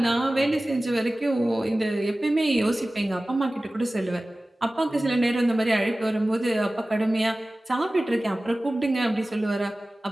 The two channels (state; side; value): normal; both; correlation 0.97